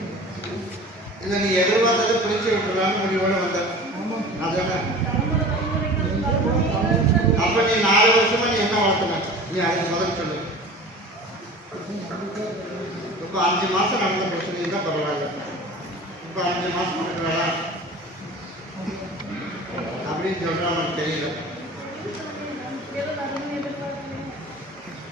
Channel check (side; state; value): both; normal; correlation 0.39